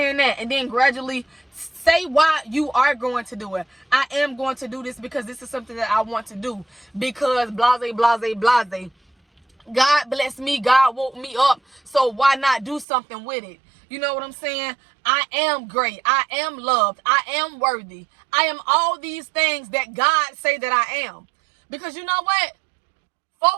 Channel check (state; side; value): drops out; left; at 12.9 s